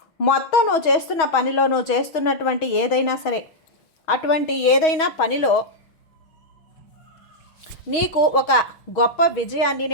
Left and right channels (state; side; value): late; right; 6.3 ms